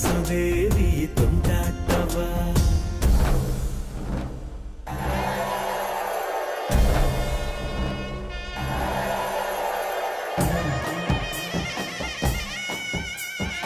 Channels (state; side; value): identical; both; correlation 1.00